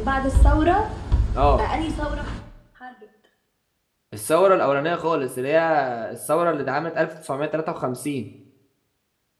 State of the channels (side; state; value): both; identical; correlation 1.00